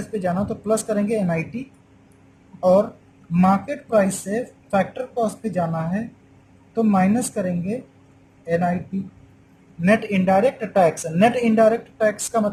पे जाना तो प्लस करेंगे NIT, और मार्केट प्राइस से फैक्टर कॉस्ट पे जाना है तो माइनस करेंगे NIT, net indirect tax. Net indirect tax का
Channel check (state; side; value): identical; both; correlation 1.00